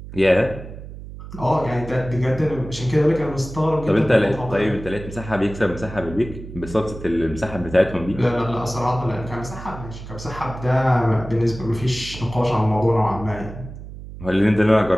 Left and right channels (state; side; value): noise; right; hum, 13 dB below the sound